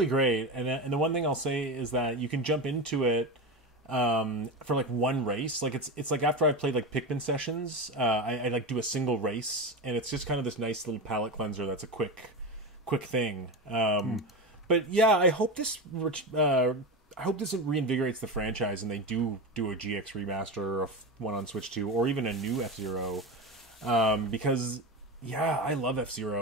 great. And the one thing I'll say is that you can jump into it for like one race. Like it's like after I've played like Pikmin sessions, I like do a single race, and it's just kind of this nice little palate cleanser that's a quick thing. But yeah, I hope this reinvigorates the franchise and they do a GX remaster of one on Switch 2 or even a new F-Zero, because yeah, I love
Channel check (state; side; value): normal; both; correlation 0.20